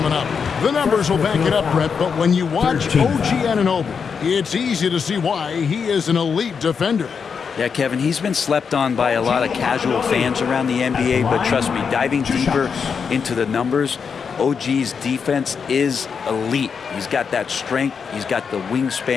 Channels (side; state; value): right; quieter; 6.1 dB